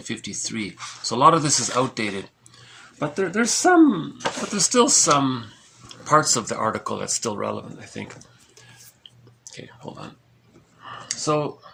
so a lot of this is outdated. But there's still some parts of the article that's still relevant, I think. Okay, hold on. So,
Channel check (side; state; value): both; identical; correlation 1.00